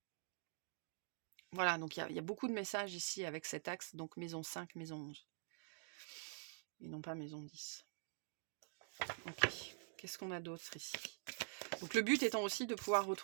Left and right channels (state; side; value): silent; left; digital silence